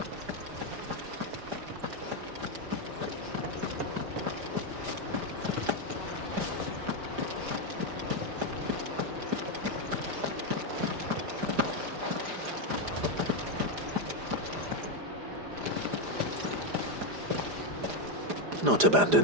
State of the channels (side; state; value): left; late; 4.9 ms